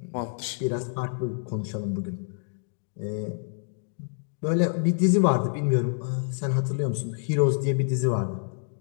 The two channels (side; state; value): right; silent; digital silence